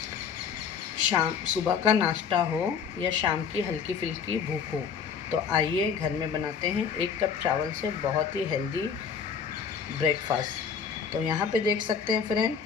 सुबह का नाश्ता हो या शाम की हल्की फुल्की भूख हो तो आइए घर में बनाते हैं 1 कप चावल से बहुत ही हेल्दी ब्रेकफास्ट। तो यहाँ पे देख सकते हैं फ्रेंड,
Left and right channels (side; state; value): right; quieter; 6.6 dB